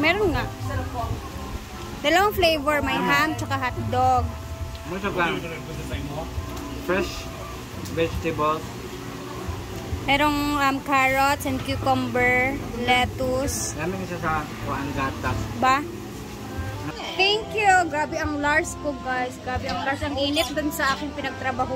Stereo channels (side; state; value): both; identical; correlation 1.00